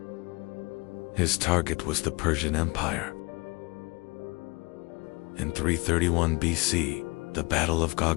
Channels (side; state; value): right; quieter; 26.7 dB